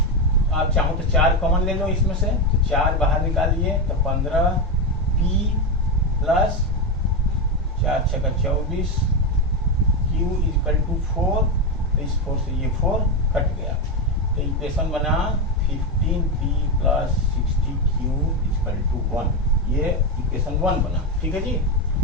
आप चाहो तो 4 कॉमन ले लो इसमें से, तो 4 बाहर निकालिए तो 15p प्लस 4 छक्का 24 q इक्वल टू 4, तो इस 4 से ये 4 कट गया, तो इक्वेशन बना 15p plus 60q equal to 1, ये इक्वेशन 1 बना। ठीक है जी,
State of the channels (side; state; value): both; normal; correlation 0.11